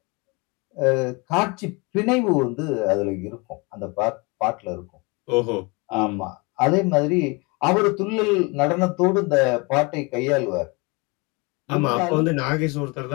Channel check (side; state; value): right; quieter; 28.3 dB